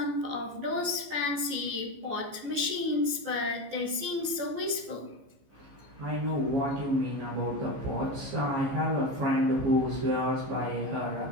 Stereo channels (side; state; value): left; late; 15 ms